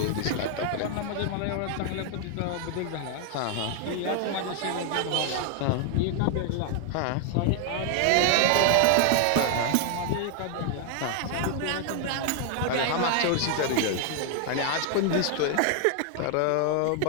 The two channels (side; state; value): both; different; correlation 0.00